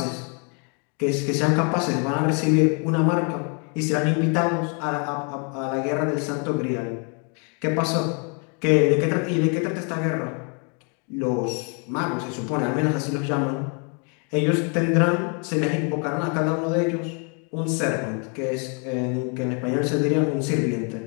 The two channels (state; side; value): quieter; right; 37.3 dB